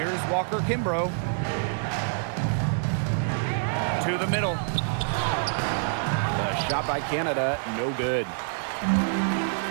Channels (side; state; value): left; silent; 60 dB below the other